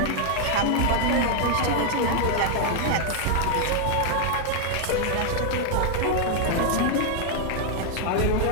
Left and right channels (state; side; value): different; both; correlation 0.00